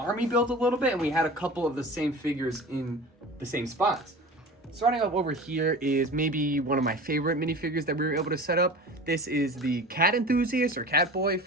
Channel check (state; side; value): normal; both; correlation 0.36